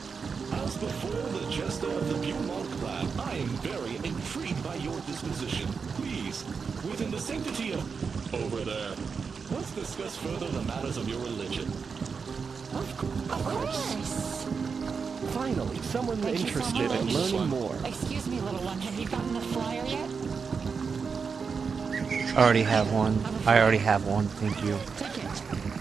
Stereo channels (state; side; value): quieter; left; 5.5 dB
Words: As before the jester of the Beaumont clan, I am very intrigued by your disposition. Please, within the sanctity of over there, let's discuss further the matters of your religion. Of course. Finally, someone interested in learning more. Excuse me, little one, have you gotten the flyer yet? I already have one. Thank you. Take it.